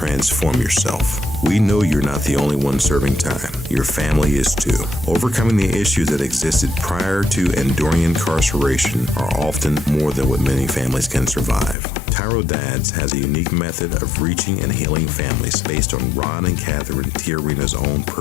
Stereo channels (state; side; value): drops out; right; at 11.8 s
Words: yourself. We know you're not the only one serving time. Your family is too. Overcoming the issues that existed prior to and during incarceration are often more than what many families can survive. TYRO Dads has a unique method of reaching and healing families based on Ron and Catherine Tiarina's own